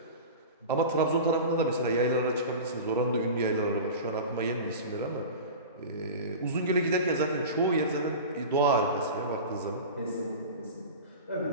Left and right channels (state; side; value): inverted; both; correlation -0.31